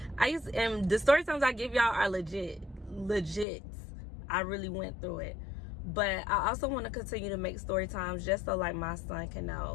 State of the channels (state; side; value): drops out; right; at 3.5 s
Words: And the story times I give y'all are legit. I really went through it. But I also want to continue to make story times just so like my son can